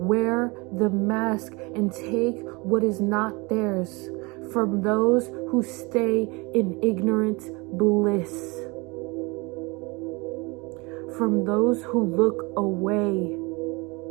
the mask and take what is not theirs from those who stay in ignorant bliss. From those who look away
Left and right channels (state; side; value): quieter; left; 26.7 dB